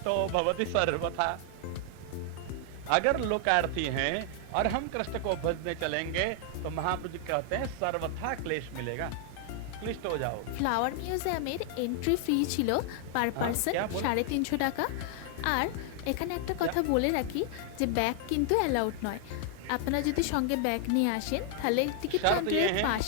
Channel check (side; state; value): both; different; correlation 0.00